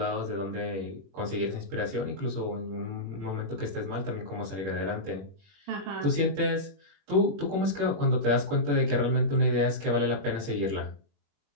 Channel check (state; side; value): late; left; 21 ms